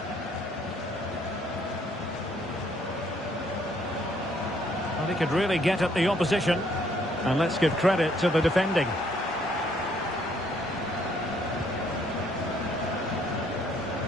Well, he could really get at the opposition. And let's give credit to the defending.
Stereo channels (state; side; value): normal; both; correlation 0.66